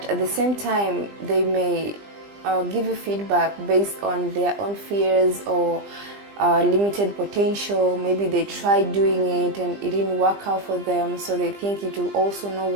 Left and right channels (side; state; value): left; late; 20 ms